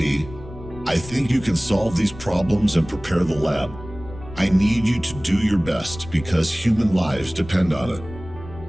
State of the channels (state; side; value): noise; left; rumble, 15 dB below the sound